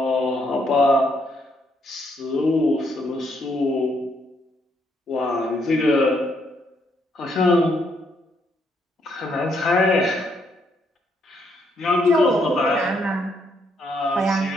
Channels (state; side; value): normal; both; correlation 0.73